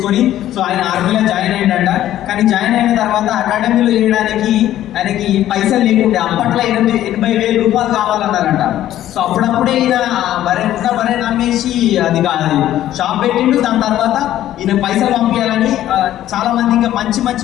సో ఆయన ఆర్మీలో జాయిన్ అయిందంట. కానీ జాయిన్ అయిన తర్వాత అకాడమీలో చేయడానికి ఆయనకి పైసలు లేకుండే. అప్పట్లో 80,000 రూపాయలు కావాలన్నారంట. సో అప్పుడప్పుడే ఈయన బరే నమ్మేసి అది షాప్ పెట్టిండు. దాని తర్వాత ఈయన పైసలు పంపించాలని చాలా మంది ఇంకా మంచి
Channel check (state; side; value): quieter; right; 12.8 dB